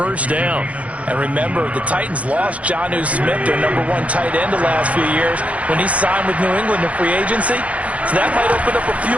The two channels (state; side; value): late; left; 0.065 ms